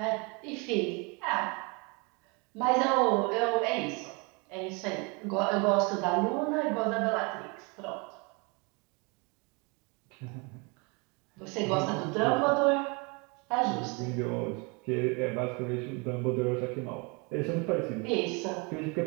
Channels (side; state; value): left; quieter; 30.6 dB